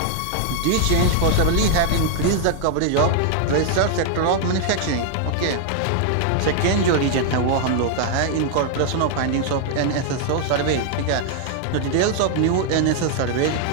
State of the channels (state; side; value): different; both; correlation 0.00